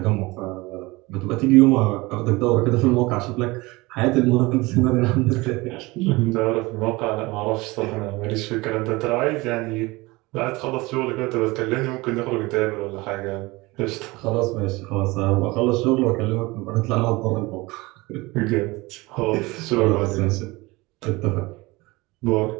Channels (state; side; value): quieter; left; 22.4 dB